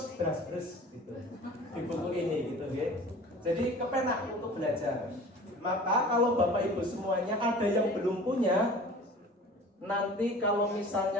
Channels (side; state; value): both; normal; correlation 0.43